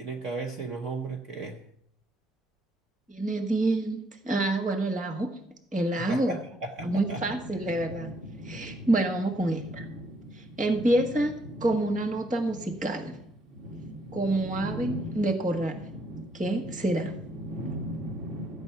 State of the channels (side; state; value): both; normal; correlation 0.71